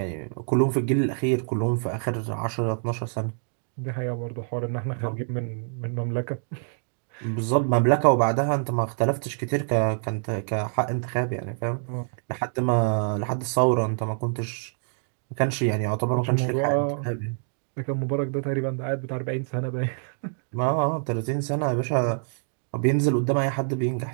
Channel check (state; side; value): silent; left; digital silence